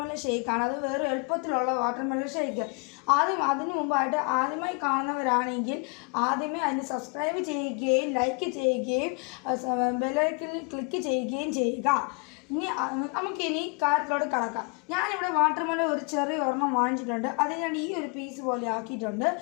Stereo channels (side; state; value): right; quieter; 34.3 dB